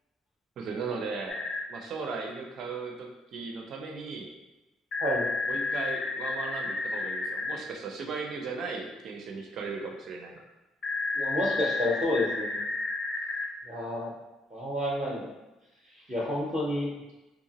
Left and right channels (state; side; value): normal; both; correlation 0.69